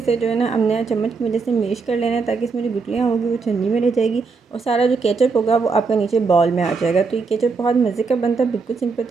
जो है ना हमने चम्मच की वजह से मैश कर लेना है, ताकि इसमें जो गुठलियाँ होगी वो छन्नी में रह जाएगी और सारा जो केचप होगा वो आपका नीचे बॉल में आ जाएगा। तो ये केचप बहुत मज़े का बनता है, बिल्कुल सिंपल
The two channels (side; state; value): left; quieter; 4.7 dB